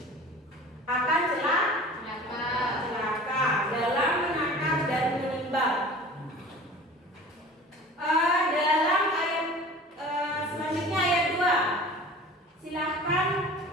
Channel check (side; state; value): both; normal; correlation 0.41